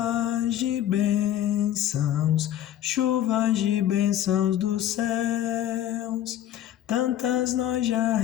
de bênçãos dos céus. Tantas nós já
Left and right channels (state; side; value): quieter; right; 11.7 dB